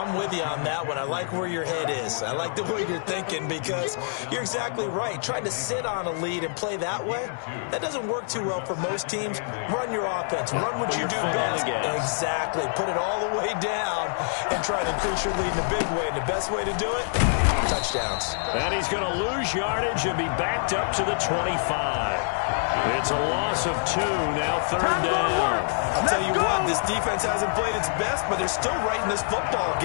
with you on that one. I like where your head is. I like the way you're thinking because you're exactly right. Trying to sit on a lead and play that way, that doesn't work too well for most teams. Run your offense. Run what you do best. Exactly. Put it all the way down and try to increase your lead in a big way. And the best way to do it, touchdowns. And he's going to lose yardage and be backed up to the 25. It's a loss of 2, now 3rd down. I'll tell you what, this defense hasn't played its best, but they're still right in this football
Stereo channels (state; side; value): silent; right; 61 dB below the other